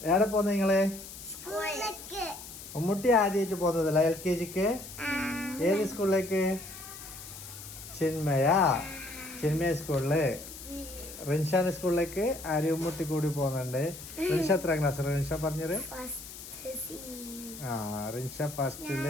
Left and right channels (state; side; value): noise; left; hiss, 13 dB below the sound